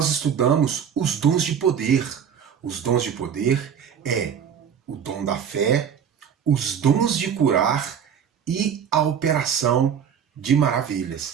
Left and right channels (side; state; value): left; quieter; 8.0 dB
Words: estudamos os dons de poder. Os dons de poder é o dom da fé, os dons de curar e a operação de